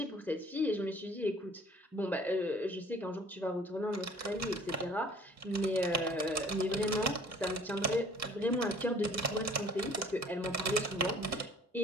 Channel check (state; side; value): normal; both; correlation 0.52